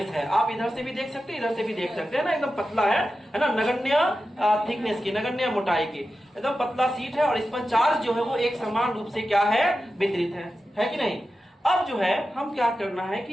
है, आप इधर से भी देख सकते हैं इधर से भी देख सकते हैं ना, एकदम पतला है ना, नगण्य थिकनेस की, नगण्य मोटाई की, एकदम पतला शीट है और इस पर चार्ज जो है वो एक समान रूप से क्या है वितरित है कि नहीं। अब जो है हम क्या करना है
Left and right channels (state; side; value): normal; both; correlation 0.92